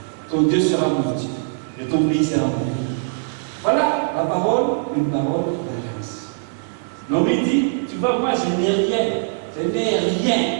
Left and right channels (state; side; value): silent; left; digital silence